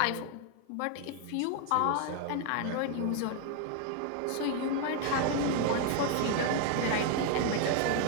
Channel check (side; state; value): both; different; correlation 0.00